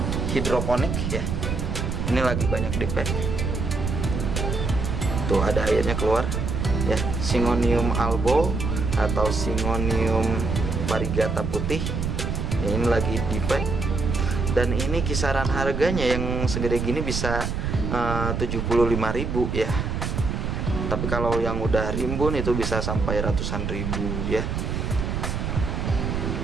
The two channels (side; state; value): right; noise; rumble, 2 dB below the sound